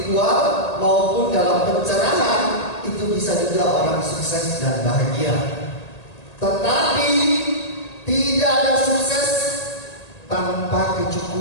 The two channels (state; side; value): late; right; 1.8 ms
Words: maupun dalam pencerahan itu bisa juga orang sukses dan bahagia. Tetapi tidak ada sukses tanpa